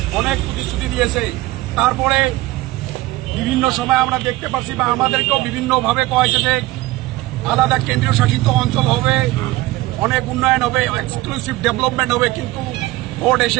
অনেক প্রতিশ্রুতি দিয়েছে। তারপরে বিভিন্ন সময় আমরা দেখতে পাচ্ছি বা আমাদেরকেও বিভিন্নভাবে কয়েছে যে আলাদা কেন্দ্রীয় শাসিত অঞ্চল হবে, অনেক উন্নয়ন হবে, এক্সক্লুসিভ ডেভেলপমেন্ট হবে, কিন্তু ভোট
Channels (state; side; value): quieter; left; 18.8 dB